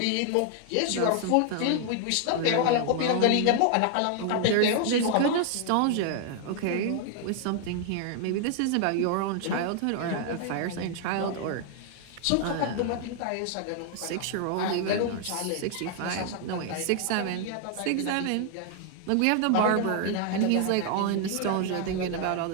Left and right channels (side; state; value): both; different; correlation 0.00